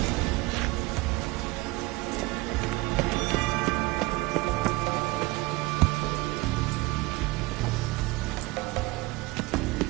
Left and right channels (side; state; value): left; quieter; 21.8 dB